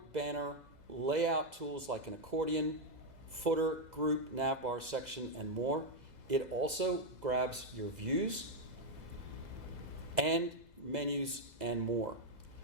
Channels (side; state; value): left; late; 2.0 ms